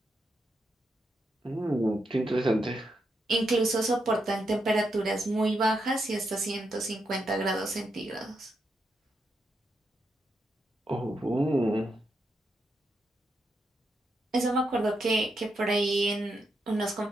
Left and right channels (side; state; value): both; normal; correlation 0.82